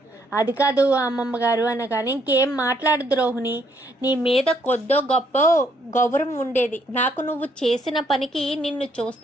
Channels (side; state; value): both; normal; correlation 0.70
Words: అది కాదు అమ్మమ్మ గారు అనగానే, ఇంకేం మాట్లాడదు రోహిణి, నీ మీద కొద్దో గొప్ప గౌరవం ఉండేది, నాకు నువ్వు చేసిన పనికి నిన్ను